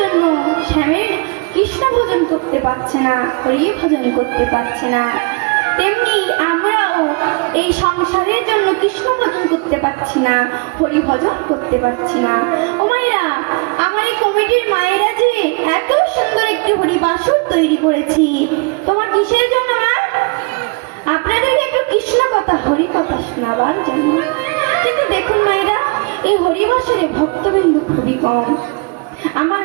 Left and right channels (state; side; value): quieter; left; 31.0 dB